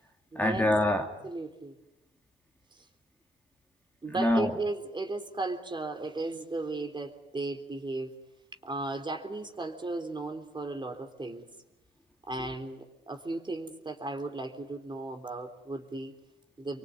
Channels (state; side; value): normal; both; correlation 0.75